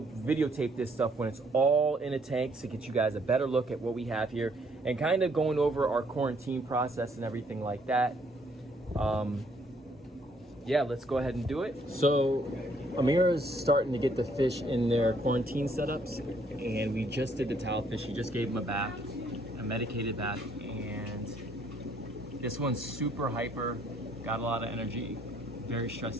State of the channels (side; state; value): both; normal; correlation 0.66